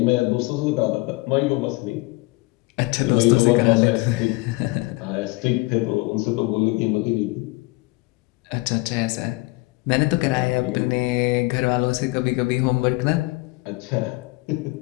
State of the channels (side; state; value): right; quieter; 23.1 dB